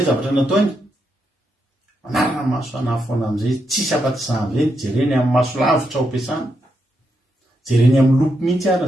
zavatra nataony manarana maso anahy foana amin'izay tsisy afa-tsy za amin'izay jereny amin'ny maso lavitra ao ampiasana, jereny amin'ny lopy mihitsy ary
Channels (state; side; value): normal; both; correlation 0.82